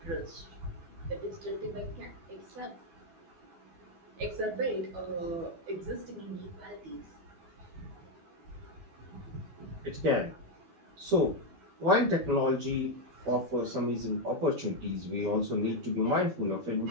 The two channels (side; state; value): left; late; 12 ms